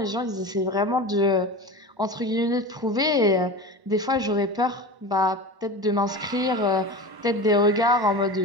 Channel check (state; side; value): late; left; 1.1 ms